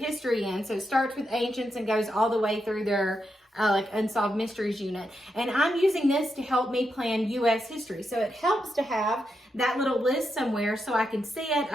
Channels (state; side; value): normal; both; correlation 0.84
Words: in. So it starts with ancients and goes all the way through their like Unsolved Mysteries unit. And I'm using this to help me plan U.S. history. So it helps to have that little list somewhere so I can see it.